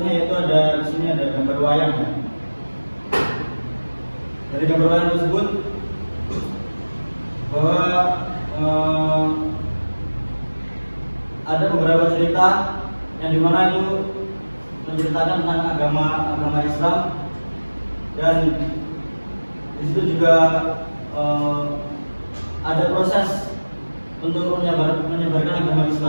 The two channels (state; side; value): inverted; both; correlation -1.00